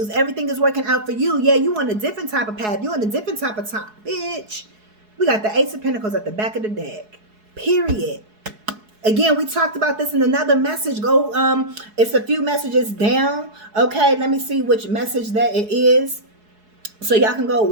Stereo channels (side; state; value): left; late; 4.7 ms